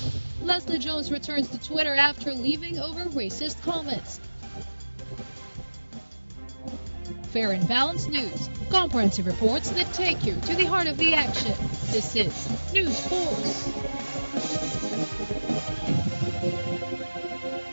Leslie Jones returns to Twitter after leaving over racist comments. Fair and balanced news. Comprehensive reports that take you to the heart of the action. This is News Force.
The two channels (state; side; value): inverted; both; correlation -1.00